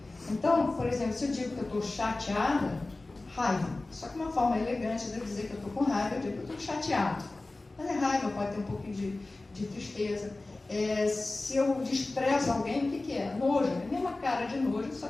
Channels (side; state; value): right; quieter; 3.1 dB